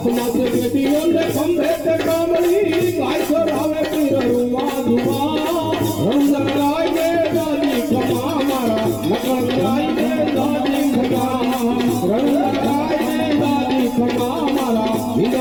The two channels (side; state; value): left; noise; rumble, 20 dB below the sound